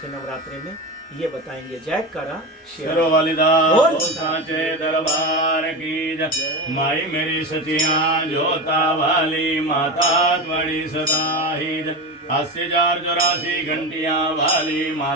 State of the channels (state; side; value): normal; both; correlation 0.22